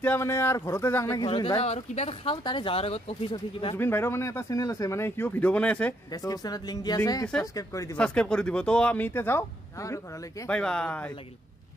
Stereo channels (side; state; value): both; normal; correlation 0.73